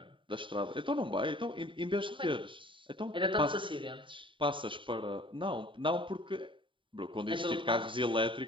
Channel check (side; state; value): left; late; 0.24 ms